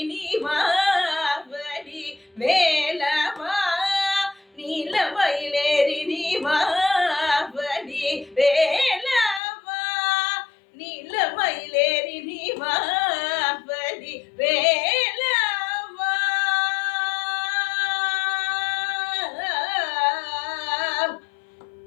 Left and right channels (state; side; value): drops out; right; at 9.4 s